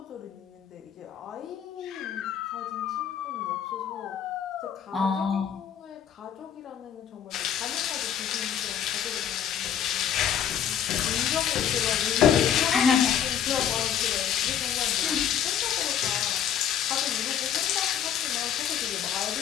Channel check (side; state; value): right; quieter; 9.1 dB